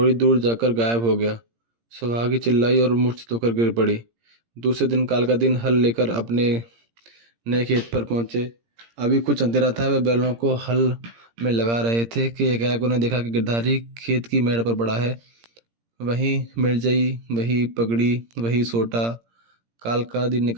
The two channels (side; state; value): left; late; 17 ms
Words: दूर जाकर गायब हो गया। सुहागी चिल्लाई और मूर्छित होकर गिर पड़ी। दूसरे दिन काल का दिन हल लेकर अपने नए खेत पर पहुंचे। अभी कुछ अंधेरा था। वह बैलों को हल में लगा रहे थे कि एकाएक उन्हें देखा कि गिरधारी खेत की मेड़ पर पड़ा है। वही मिर्जई, वही पगड़ी, वही सोटा। काल का दिन ने